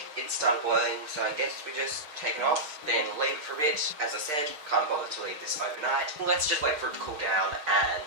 it started boiling, so I guess we just take it off, then leave it for a bit. As I said, can't bother to leave this overnight. Let's just wait for it to cool down, and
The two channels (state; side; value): late; left; 6.6 ms